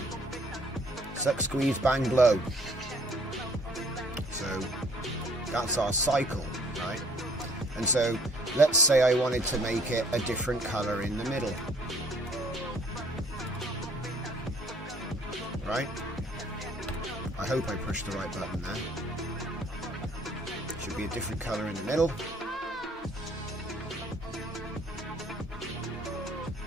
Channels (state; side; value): normal; both; correlation 0.59